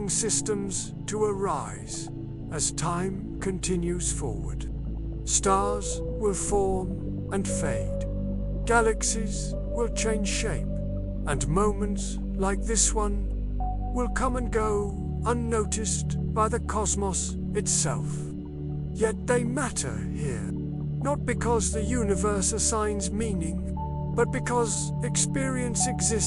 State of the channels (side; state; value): both; identical; correlation 1.00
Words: systems to arise as time continues forward. Stars will form and fade. Galaxies will change shape, and moments like this one will come and go unnoticed by the cosmos itself. Yet they matter here, not because the universe assigns meaning, but because experience